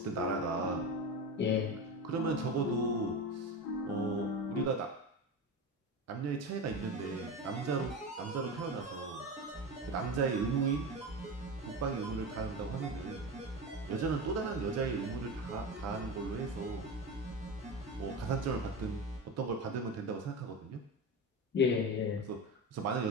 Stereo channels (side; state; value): both; normal; correlation 0.23